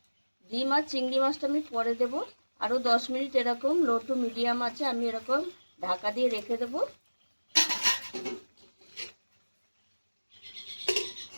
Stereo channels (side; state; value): both; inverted; correlation -1.00